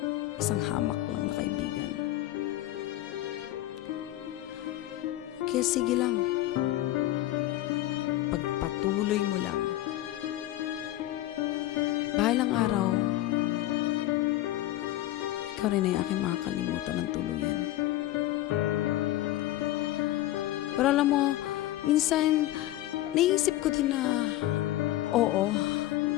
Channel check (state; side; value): quieter; right; 15.1 dB